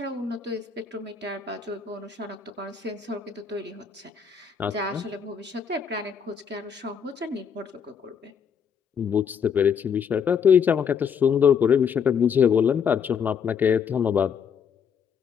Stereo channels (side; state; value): right; quieter; 7.0 dB